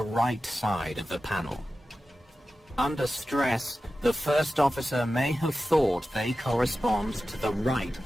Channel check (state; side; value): normal; both; correlation 0.94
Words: right side of the panel. Under stress, the first officer may have thought they correspond to the right